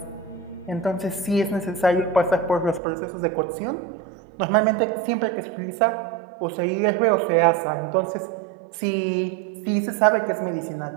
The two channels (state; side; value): drops out; left; at 2.8 s